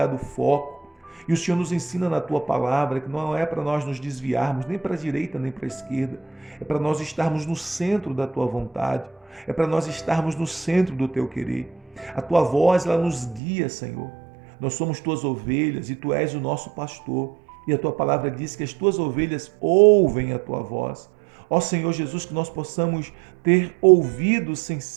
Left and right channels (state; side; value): drops out; left; at 13.4 s